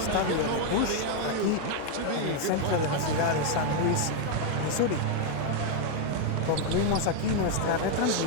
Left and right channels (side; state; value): both; different; correlation 0.01